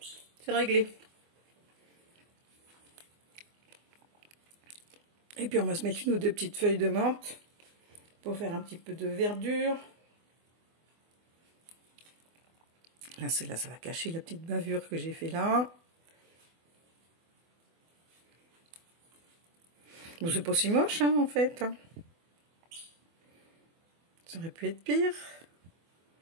c'est réglé. Et puis on va se mettre une ou deux petites feuilles de menthe pour faire un petit peu de verdure. Là, celle-là, ça va cacher la petite bavure que j'ai fait là. Bon, c'est pas si moche, hein, en fait. Ça aurait pu être pire.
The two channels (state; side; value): late; left; 24 ms